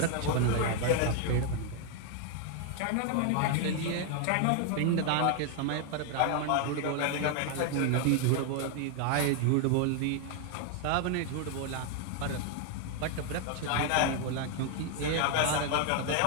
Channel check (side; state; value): both; different; correlation 0.00